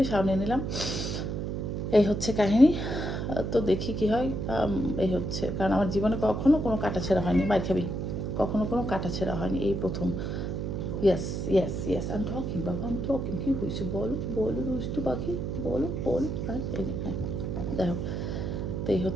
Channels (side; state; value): right; noise; hum, 3 dB below the sound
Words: শাওয়ার নিয়ে নিলাম। এই হচ্ছে কাহিনী। তো দেখি কি হয়। এই হচ্ছে, কারণ আমার জীবনে কখনো কোনো কাটাছেঁড়া হয়নি, মার খাবি, কখনো কোনো কাটাছেঁড়া হয়নি, এই প্রথম। Yes yes yes, I am talking বাবা, আই এম টকিং। কী হয়েছে বলো বলো দুষ্টু পাখি, বলো বল। হ্যাঁ এই হ্যাঁ, যাই হোক, তো এই